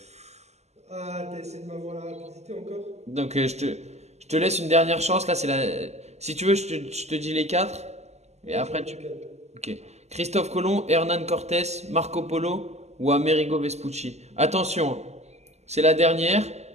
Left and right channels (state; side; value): late; left; 0.32 ms